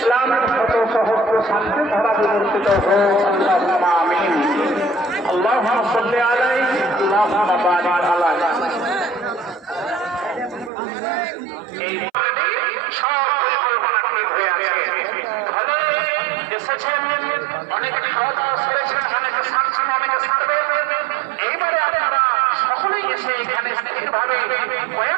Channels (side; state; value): left; drops out; at 10.7 s